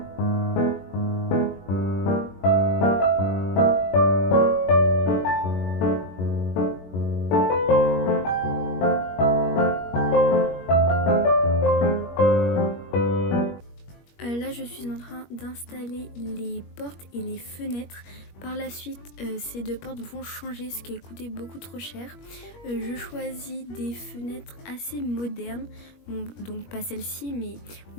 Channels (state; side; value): late; right; 21 ms